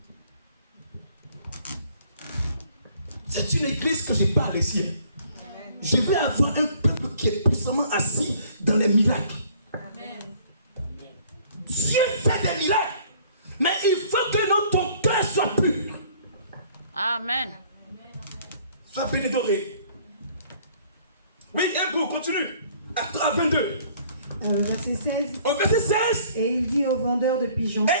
C'est une église que je parle ici. Je veux avoir un peuple qui est puissamment assis dans les miracles. Dieu fait des miracles, mais il faut que ton cœur soit pur. Amen. Sois bénédoré. Oui, un goût, continue. À 22. Verset 16. Au verset 16. Et il dit aux vendeurs de pigeons.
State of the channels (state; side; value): inverted; both; correlation -0.57